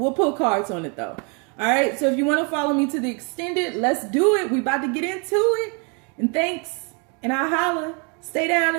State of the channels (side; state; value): left; quieter; 34.4 dB